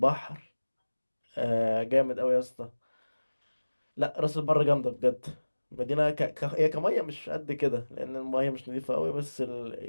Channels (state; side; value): inverted; both; correlation -1.00